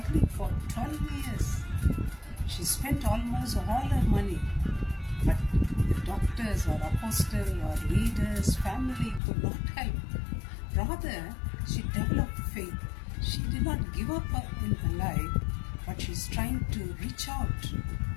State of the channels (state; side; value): drops out; right; at 9.2 s